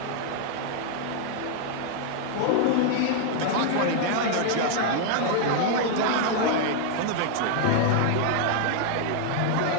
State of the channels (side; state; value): both; different; correlation 0.00